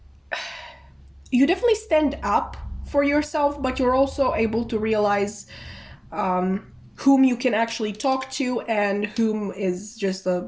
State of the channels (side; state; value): both; identical; correlation 1.00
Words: You definitely stand up for yourself, but you're also able to realize whom you can actually talk to and whom is just